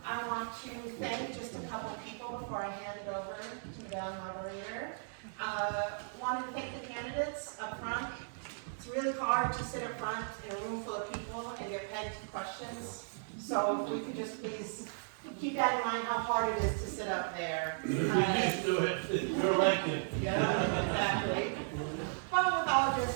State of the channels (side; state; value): left; silent; digital silence